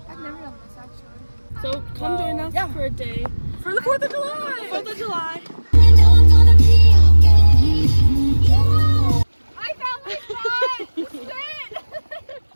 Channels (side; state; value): both; inverted; correlation -1.00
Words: I've never done this actually. So come join us for a day for the 4th of July. 4th of July. I found my spot! This is it!